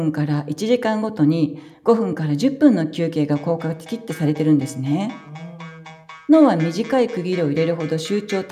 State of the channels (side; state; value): both; identical; correlation 1.00